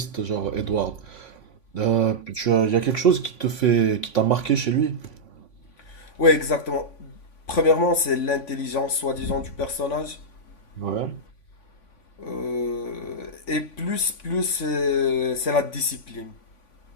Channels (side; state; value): right; late; 3.5 ms